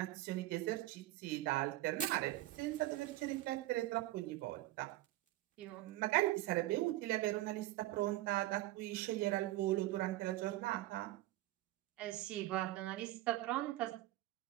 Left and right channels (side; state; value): left; quieter; 16.6 dB